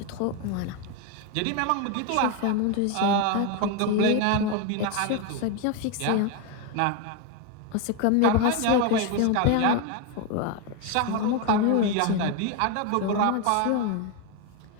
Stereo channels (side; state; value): both; different; correlation 0.02